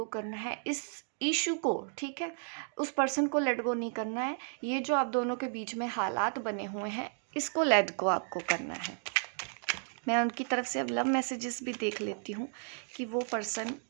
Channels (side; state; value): left; silent; 56 dB below the other